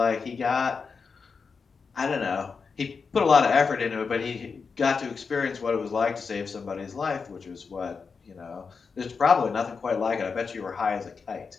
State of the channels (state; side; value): quieter; right; 5.2 dB